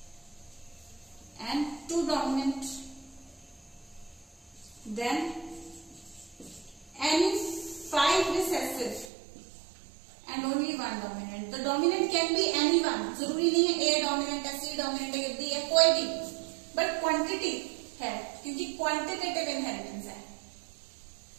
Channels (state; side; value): drops out; left; at 9.1 s